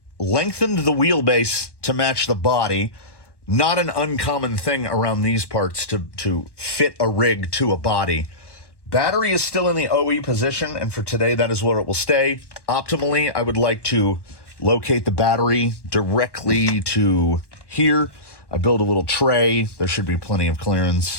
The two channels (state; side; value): late; right; 1.1 ms